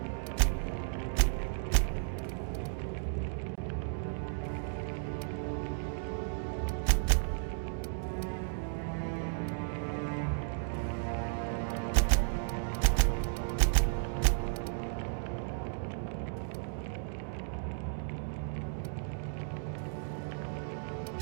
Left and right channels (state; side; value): silent; left; digital silence